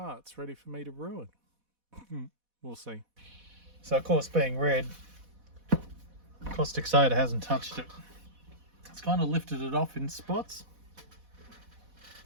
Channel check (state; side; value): late; left; 4.1 ms